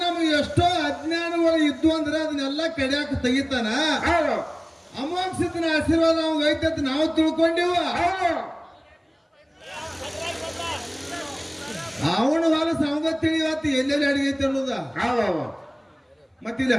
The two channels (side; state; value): both; identical; correlation 1.00